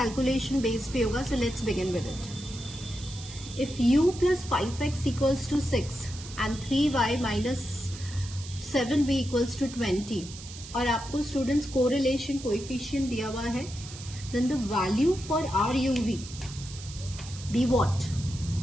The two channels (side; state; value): right; noise; hiss, 14 dB below the sound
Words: बेस पे होगा. So let's begin with it. If u plus 5x equals to 6 and 3y minus 7b equals to 20 और आपको स्टूडेंट्स कोरिलेशन कोएफिशिएंट दिया हुआ है, then the value for RUV be what?